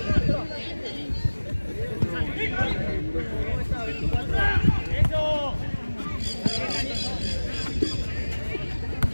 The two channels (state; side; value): inverted; both; correlation -1.00